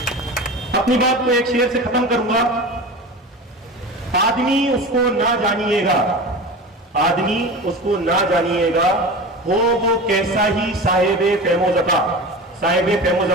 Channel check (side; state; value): both; normal; correlation 0.31